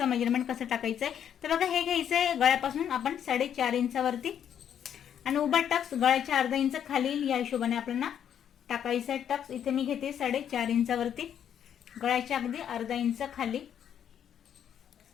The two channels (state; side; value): quieter; right; 9.1 dB